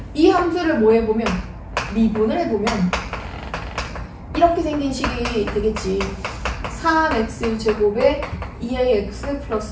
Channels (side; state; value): both; identical; correlation 1.00